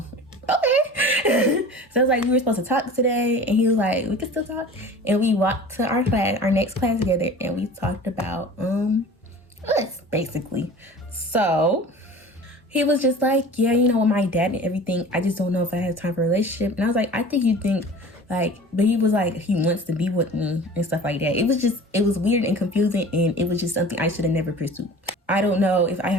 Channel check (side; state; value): both; normal; correlation 0.40